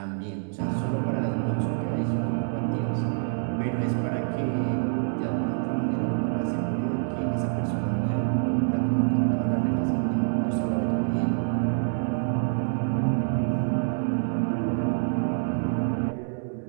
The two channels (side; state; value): left; silent; 61 dB below the other